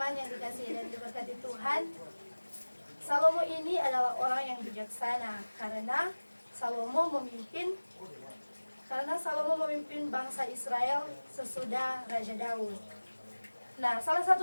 yang dikasihi dan diberkati Tuhan, Salomo ini adalah orang yang bijaksana karena Salomo memimpin bangsa Israel sesudah Raja Daud. Nah, salah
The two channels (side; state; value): both; inverted; correlation -1.00